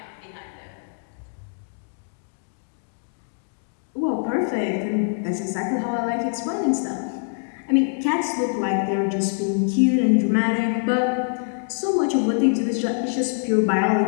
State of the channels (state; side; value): silent; right; 63 dB below the other